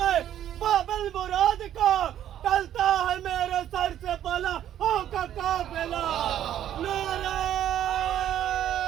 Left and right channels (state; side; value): quieter; left; 11.1 dB